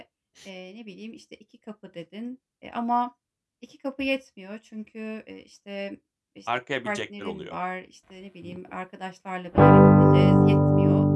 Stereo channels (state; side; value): identical; both; correlation 1.00